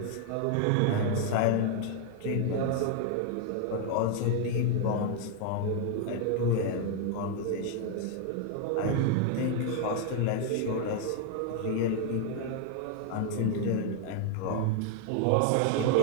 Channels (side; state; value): both; different; correlation 0.00